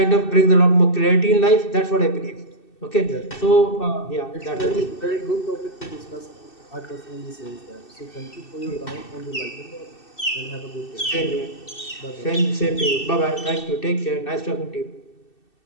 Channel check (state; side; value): late; right; 2.6 ms